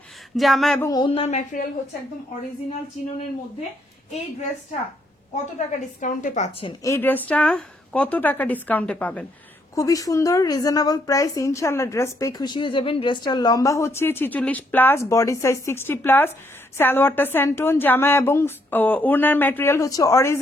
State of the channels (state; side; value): normal; both; correlation 0.73